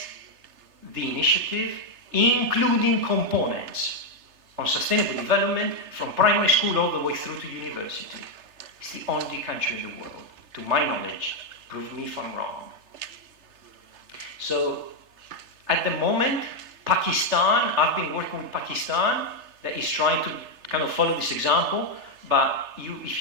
the initiative, including components on sustainable development from primary school all the way through to university. It's the only country in the world, to my knowledge. Prove me if I'm wrong. So, at the moment, Pakistan, I've been working with Pakistan, that is trying to kind of follow this example, but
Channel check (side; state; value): left; late; 3.3 ms